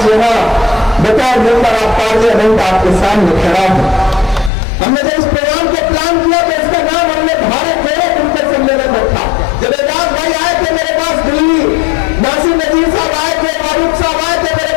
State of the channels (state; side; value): drops out; right; at 4.5 s